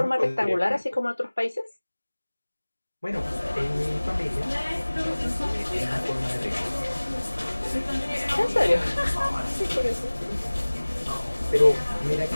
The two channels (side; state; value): both; inverted; correlation -1.00